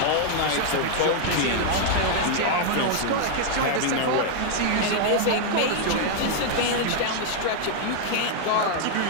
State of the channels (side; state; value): both; different; correlation -0.01